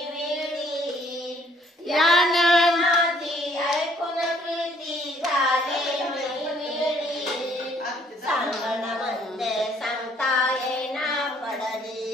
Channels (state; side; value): normal; both; correlation 0.63